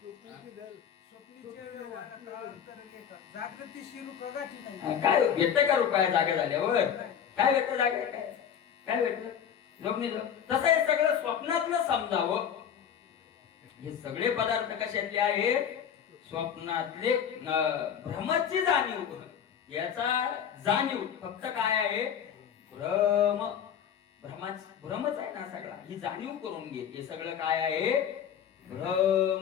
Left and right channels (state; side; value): quieter; right; 8.5 dB